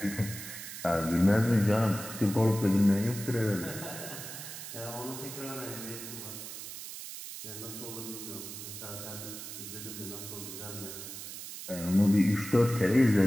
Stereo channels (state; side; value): noise; right; hiss, 10 dB below the sound